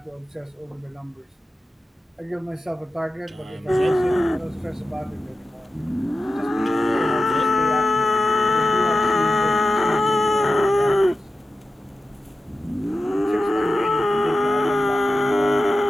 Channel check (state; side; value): normal; both; correlation 0.92